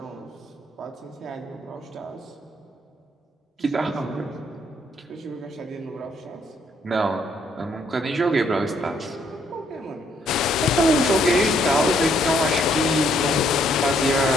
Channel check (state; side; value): normal; both; correlation 0.69